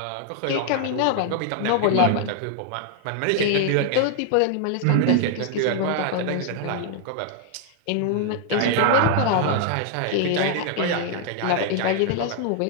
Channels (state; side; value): different; both; correlation 0.00